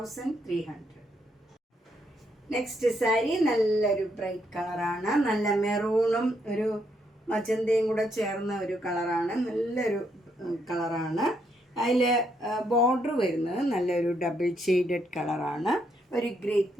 നെക്സ്റ്റ് സാരി നല്ലൊരു ബ്രൈറ്റ് കളറാണ്. നല്ല മെറൂണും ഒരു മജന്തയും കൂടെ ചേർന്ന ഒരു കളറാണ്. നല്ലൊരു കളറാണ്. അതിൽ ബോർഡർ വരുന്നത് നല്ലൊരു ഡബിൾ ഷെയ്ഡഡ് കളറാണ്. ഒരു ഗ്രേപ്പ്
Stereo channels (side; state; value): both; normal; correlation 0.76